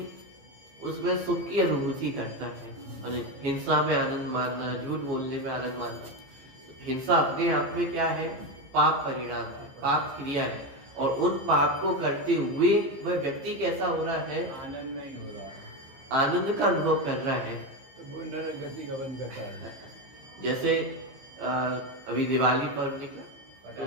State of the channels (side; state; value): left; late; 15 ms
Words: उसमें सुख की अनुभूति करता है। हिंसा में आनंद मानना, झूठ बोलने में आनंद मानना, हिंसा अपने आप में क्या है? पाप परिणाम है, पाप क्रिया है। और उन पाप को करते हुए वह व्यक्ति कैसा हो रहा है? आनंद नहीं हो रहा, आनंद का अनुभव कर रहा है। तो वो नरक गति गमन करता है। जैसे अभी दिवाली पर्व निकला, तो